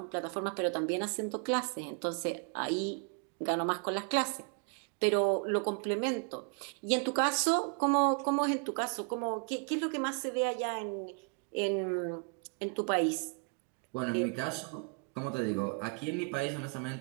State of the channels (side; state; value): left; quieter; 39.2 dB